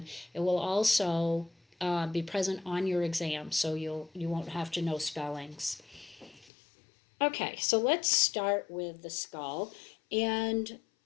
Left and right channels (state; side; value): drops out; right; at 6.5 s